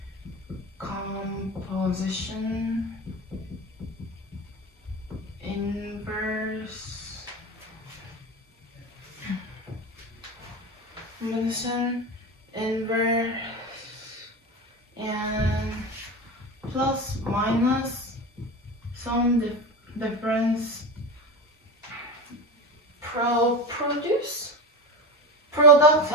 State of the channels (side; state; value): both; normal; correlation 0.24